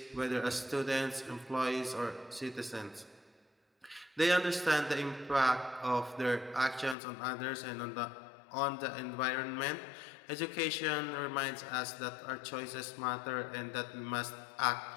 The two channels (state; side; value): drops out; right; at 7.0 s